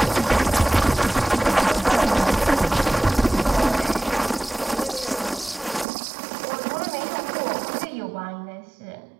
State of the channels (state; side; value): drops out; left; at 5.9 s